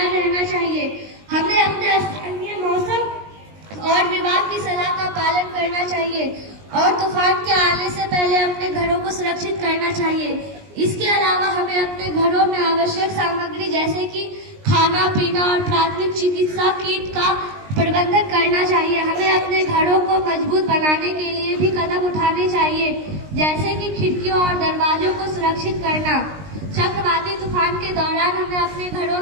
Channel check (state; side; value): late; left; 19 ms